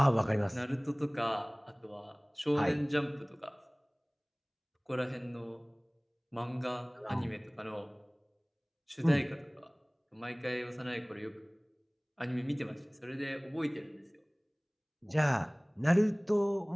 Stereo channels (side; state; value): both; identical; correlation 1.00